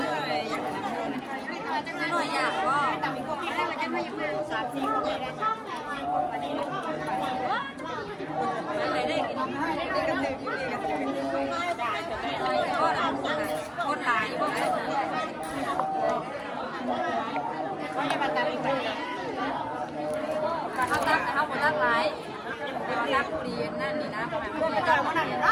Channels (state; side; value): identical; both; correlation 1.00